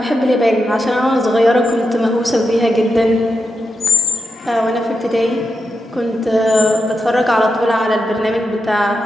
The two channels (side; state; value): both; normal; correlation 0.87